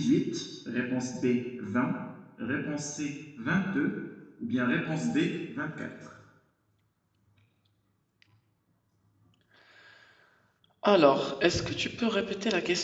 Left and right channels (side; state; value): both; identical; correlation 1.00